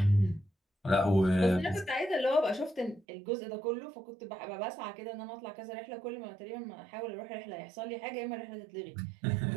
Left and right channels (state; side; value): drops out; left; at 3.0 s